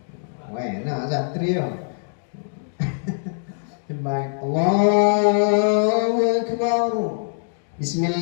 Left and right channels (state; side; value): silent; right; digital silence